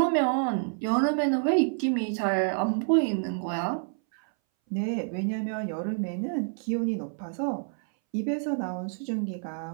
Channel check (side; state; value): left; silent; 59 dB below the other